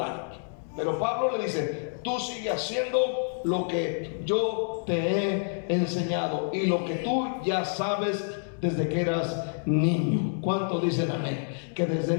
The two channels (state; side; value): silent; right; digital silence